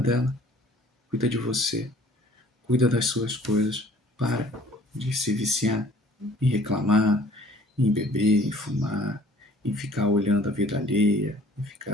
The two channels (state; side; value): normal; both; correlation 0.53